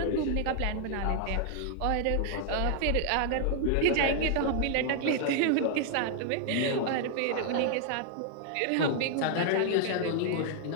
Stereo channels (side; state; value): both; different; correlation 0.00